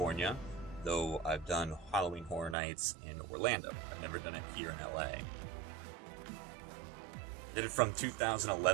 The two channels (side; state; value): left; drops out; at 2.6 s